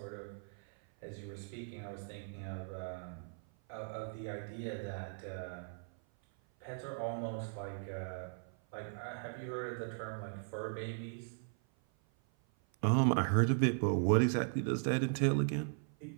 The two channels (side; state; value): left; silent; 52 dB below the other